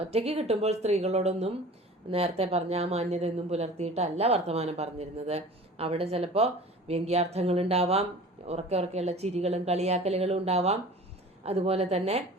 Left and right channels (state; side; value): normal; both; correlation 0.42